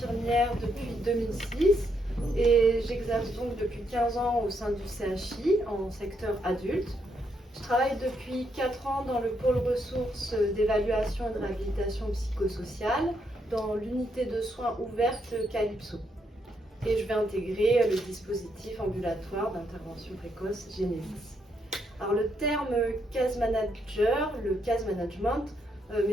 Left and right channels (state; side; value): normal; both; correlation 0.77